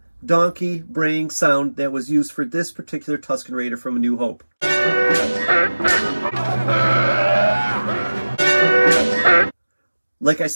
donkey braying sound that was used for this particular Tusken Raider from A New Hope. Like I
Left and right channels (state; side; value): inverted; both; correlation -1.00